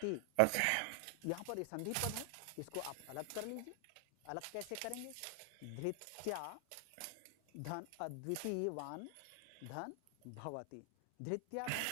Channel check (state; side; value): different; both; correlation 0.00